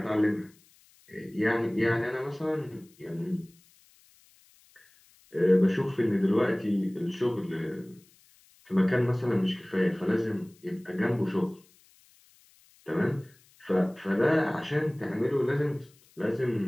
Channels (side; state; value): left; noise; hiss, 30 dB below the sound